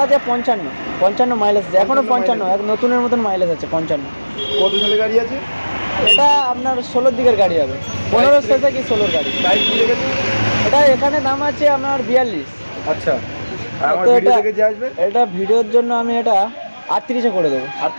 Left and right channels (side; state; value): both; inverted; correlation -1.00